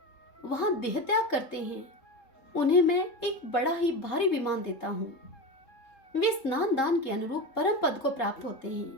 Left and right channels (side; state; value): right; late; 3.7 ms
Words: वहां देह त्याग करते हैं, उन्हें मैं एक बड़ा ही भारी विमान देता हूँ। वे स्नान दान के अनुरूप परम पद को प्राप्त होते